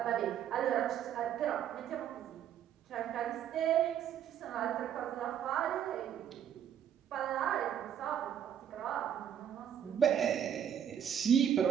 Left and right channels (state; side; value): quieter; left; 9.4 dB